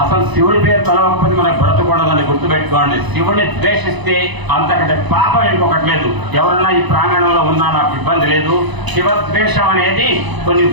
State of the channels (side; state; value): left; late; 1.0 ms